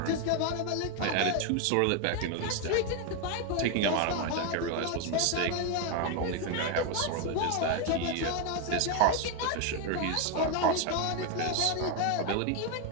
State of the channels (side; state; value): both; different; correlation 0.01